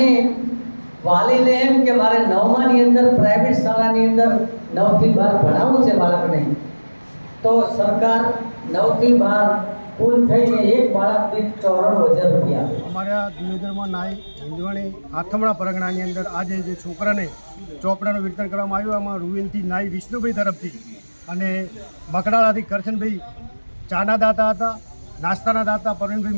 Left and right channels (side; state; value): both; inverted; correlation -1.00